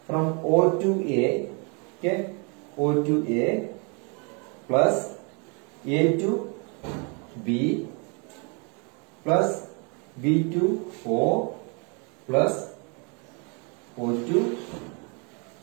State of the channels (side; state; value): left; quieter; 34.3 dB